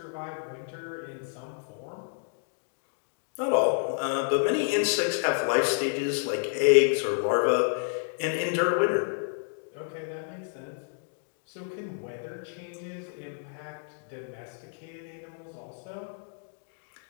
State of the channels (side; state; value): right; silent; digital silence